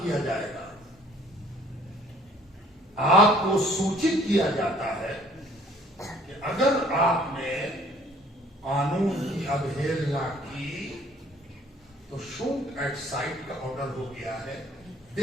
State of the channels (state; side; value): normal; both; correlation 0.56